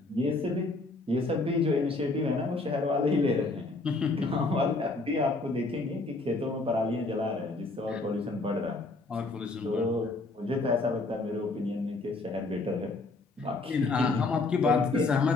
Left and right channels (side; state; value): right; quieter; 3.4 dB